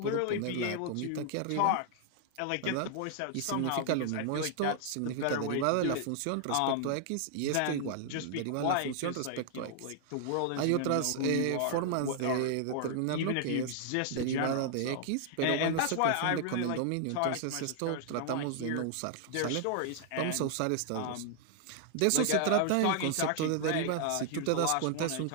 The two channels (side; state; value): both; different; correlation 0.00